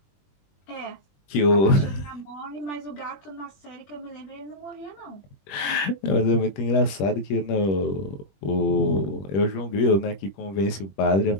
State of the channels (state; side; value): late; right; 21 ms